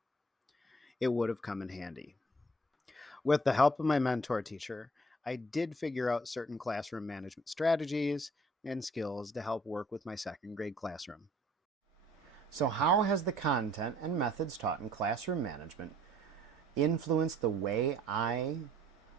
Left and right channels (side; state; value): both; normal; correlation 0.58